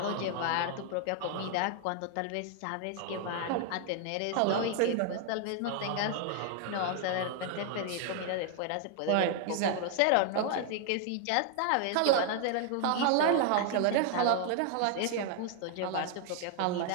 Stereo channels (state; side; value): different; both; correlation 0.00